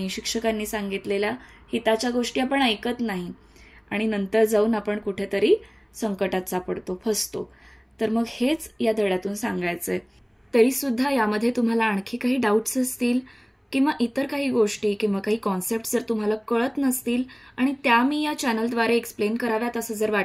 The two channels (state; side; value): identical; both; correlation 1.00